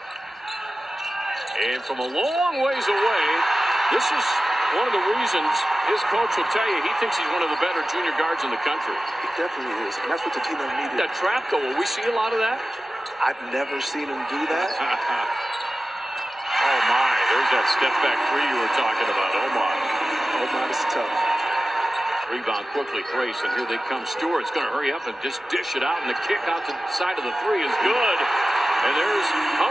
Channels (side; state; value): both; normal; correlation 0.95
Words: And from a long ways away, this is one of the reasons his coach will tell you he thinks he's one of the better junior guards in the country. He definitely is, and that's what the team needed. That trap goal, will we see a lot of that? I've never seen him do that. Oh my, there's that step back 3 you were talking about. Omot. Omot is tough. Rebound quickly, Grace, and here they come. Stewart's going to hurry up and just dish it out, and the kick out to the side of the 3 is good. And there's